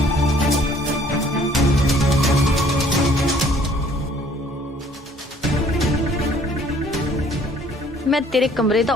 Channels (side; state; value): both; normal; correlation 0.58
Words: ਮੈਂ ਤੇਰੇ ਕਮਰੇ ਦਾ